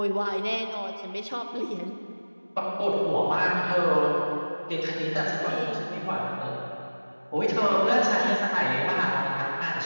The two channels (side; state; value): both; inverted; correlation -1.00